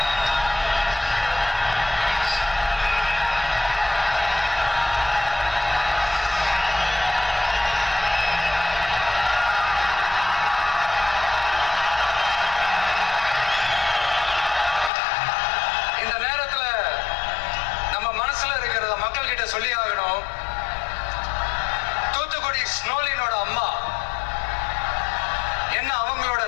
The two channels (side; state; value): right; drops out; at 14.9 s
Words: இந்த நேரத்துல நம்ம மனசுல இருக்கிறத மக்கள் கிட்ட சொல்லி ஆகணும். தூத்துக்குடி ஸ்னோலினோட அம்மா என்ன அவங்களோட